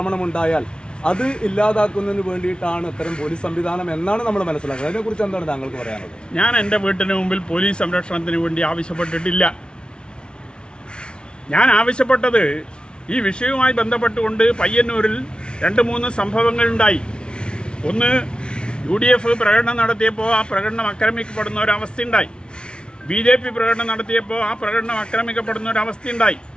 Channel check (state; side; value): late; right; 0.056 ms